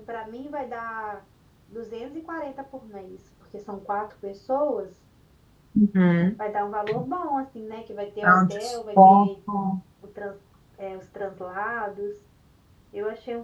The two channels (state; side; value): identical; both; correlation 1.00